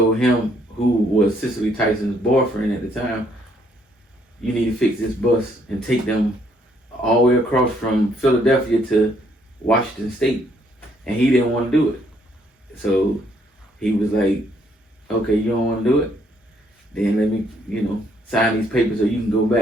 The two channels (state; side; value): normal; both; correlation 0.68